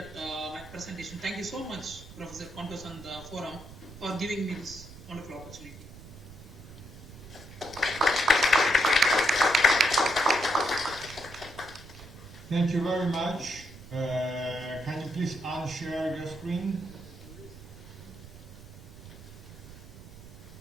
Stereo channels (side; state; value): right; noise; rumble, 16 dB below the sound